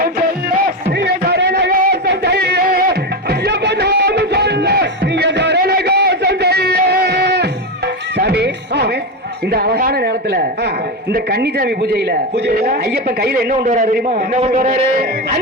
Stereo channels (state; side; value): normal; both; correlation 0.13